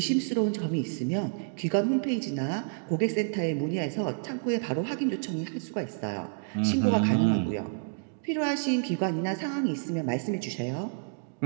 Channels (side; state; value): left; silent; digital silence